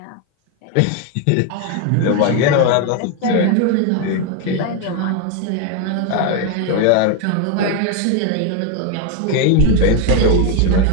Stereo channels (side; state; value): both; different; correlation 0.01